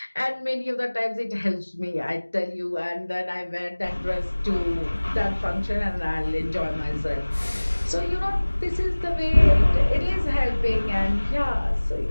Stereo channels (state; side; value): inverted; both; correlation -1.00